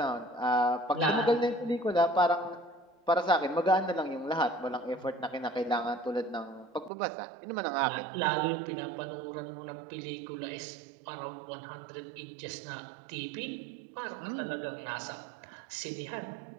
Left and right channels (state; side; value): drops out; left; at 6.9 s